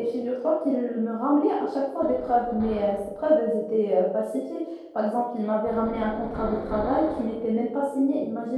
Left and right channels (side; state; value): both; identical; correlation 1.00